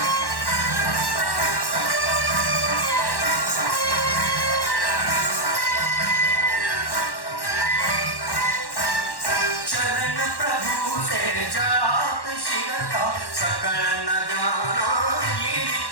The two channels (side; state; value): right; late; 1.1 ms